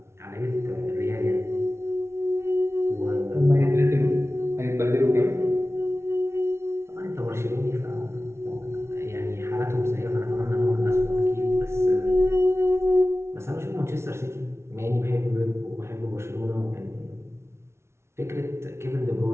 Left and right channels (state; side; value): late; left; 0.13 ms